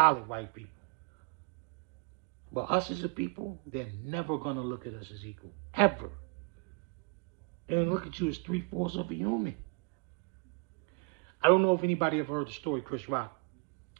white people. But us as a people, they're never going to look at us as equal. Ever. They're going to look at you as 3/4 of a human. I don't know if anybody ever heard the story Chris Rock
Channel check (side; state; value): left; quieter; 34.4 dB